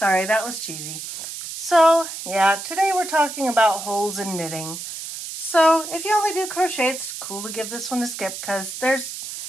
that was cheesy. So, yeah, today we're talking about holes in knitting. So, if you only do crochet, it's cool to give this one a skip because there's,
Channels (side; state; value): right; noise; hiss, 8 dB below the sound